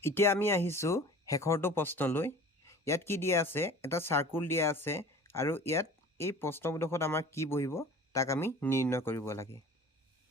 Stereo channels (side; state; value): both; normal; correlation 0.42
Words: এতিয়া আমি আহিছোঁ শেষৰটো প্ৰশ্নলৈ ইয়াত কি দিয়া আছে এটা সাৰ্কুল দিয়া আছে আৰু ইয়াত এই প্ৰশ্নবোধকত আমাৰ কি বহিব তাক আমি নিৰ্ণয় কৰিব লাগে